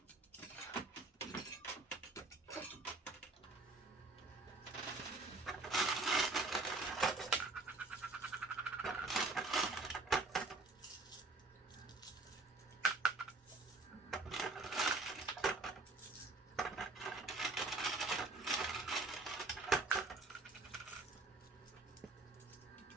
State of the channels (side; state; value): left; quieter; 3.4 dB